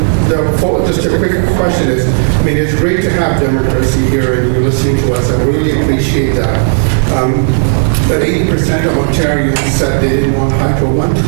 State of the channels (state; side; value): silent; left; digital silence